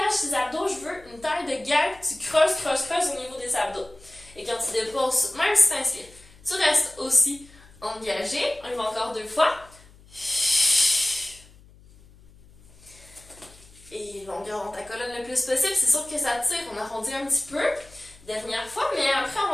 tes abdos. Je veux une taille de guêpe. Tu creuses, creuses, creuses au niveau des abdos. Et quand tu déposes, même si tu inspires, tu restes aussi engagé. On y va encore 2 fois. Et longueur dans ta colonne le plus possible. C'est sûr que ça tire. On arrondit un petit peu. Dernière fois, mais après, on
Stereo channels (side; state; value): left; noise; hum, 25 dB below the sound